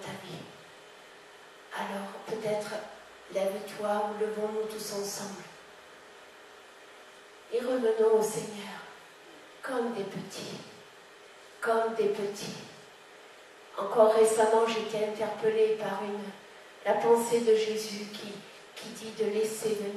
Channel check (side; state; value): both; identical; correlation 1.00